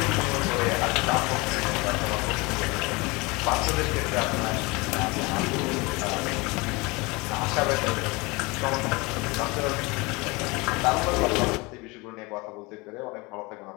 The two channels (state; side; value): quieter; right; 25.3 dB